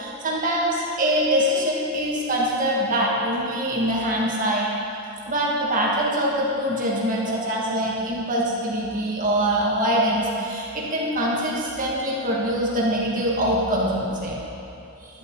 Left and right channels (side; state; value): both; normal; correlation 0.02